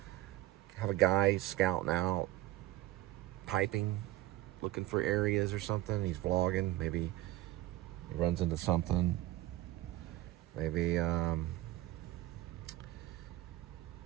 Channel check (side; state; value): left; quieter; 15.7 dB